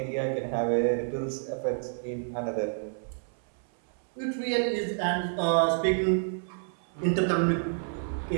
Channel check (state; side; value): silent; left; 59 dB below the other